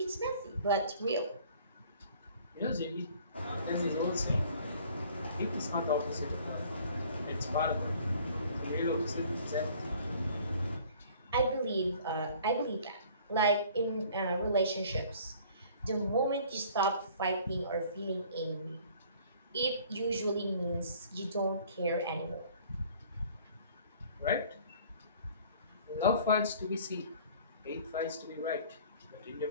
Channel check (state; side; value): inverted; both; correlation -0.53